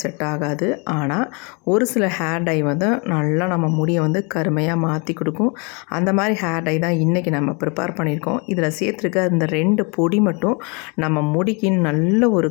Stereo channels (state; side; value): quieter; right; 32.6 dB